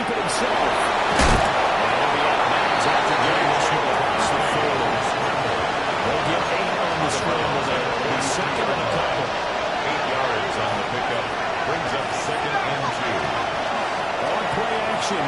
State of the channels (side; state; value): both; identical; correlation 1.00